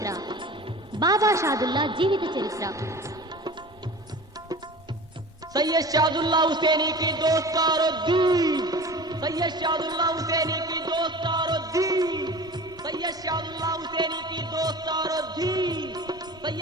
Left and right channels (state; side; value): noise; right; rumble, 28 dB below the sound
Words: బాబా షాదుల్లా జీవిత చరిత్ర. सैयद शादुल्ला हुसैनी की दोस्तारो दी, सैयद शादुल्ला हुसैनी की दोस्तारो दी, सैयद शादुल्ला हुसैनी की दोस्तारो दी,